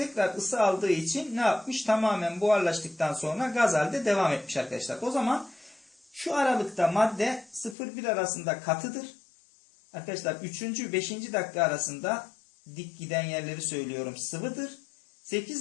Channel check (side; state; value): right; drops out; at 7.8 s